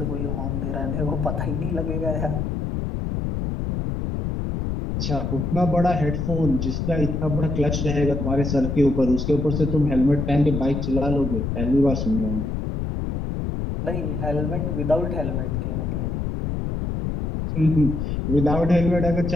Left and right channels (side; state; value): left; noise; rumble, 2 dB below the sound